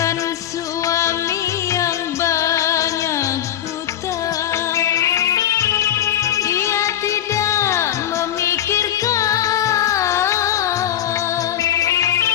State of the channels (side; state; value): right; quieter; 11.2 dB